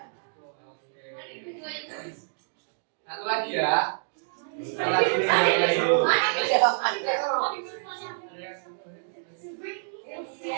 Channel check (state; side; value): silent; left; digital silence